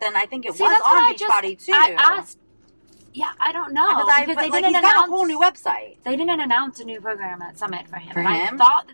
I think it was on Beachbody too. I asked. Yeah, I don't know. Because they didn't announce a whole new website. They didn't announce a new program at Summit for him. For him? I thought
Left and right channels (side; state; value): both; inverted; correlation -1.00